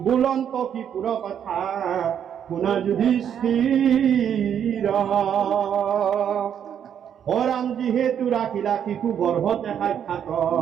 বুলন্ত কিপুৰ কথা শুনা যুধিষ্ঠিৰ হৰাম যিহেতু ৰাখিলা শিশু গৰ্ভতে সাক্ষাৎ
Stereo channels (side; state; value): left; quieter; 8.9 dB